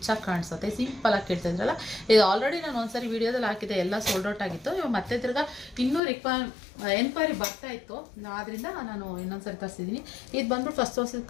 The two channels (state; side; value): drops out; right; at 6.0 s